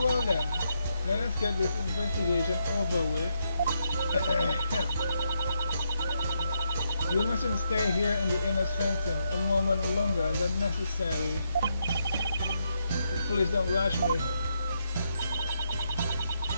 then. Let us get this investigation over with. You mustn't stay here in the inner sanctum a moment longer than necessary. Please don't rush me.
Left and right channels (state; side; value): inverted; both; correlation -0.80